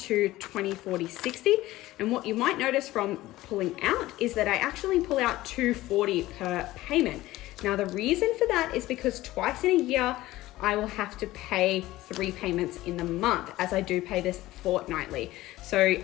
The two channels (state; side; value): quieter; right; 17.0 dB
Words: 20, 40, 60. And what you might notice from pulling out is that I actually pull out $240 per payment. Now, the reason for that is because twice in a year, I will have to pay 3 payments in the month, as I do pay this fortnightly. So